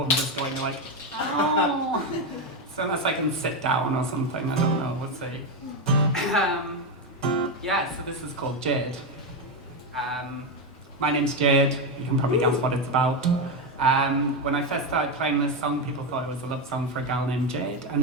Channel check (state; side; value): normal; both; correlation 0.10